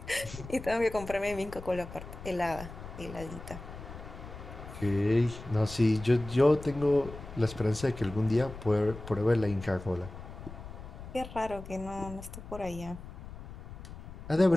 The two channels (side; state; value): left; noise; rumble, 13 dB below the sound